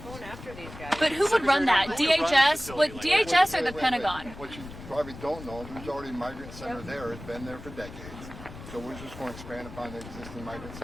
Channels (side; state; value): left; noise; rumble, 14 dB below the sound